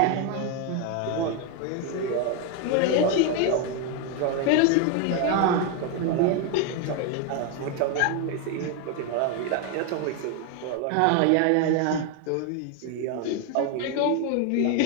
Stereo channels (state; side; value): different; both; correlation 0.01